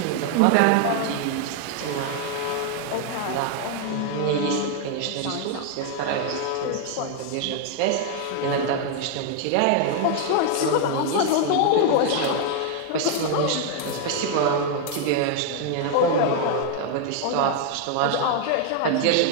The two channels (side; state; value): both; different; correlation 0.00